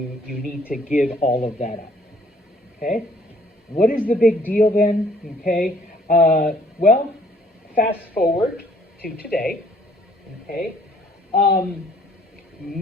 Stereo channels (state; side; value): normal; both; correlation 0.61